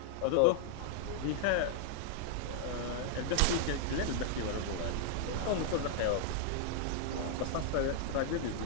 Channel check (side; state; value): both; different; correlation 0.00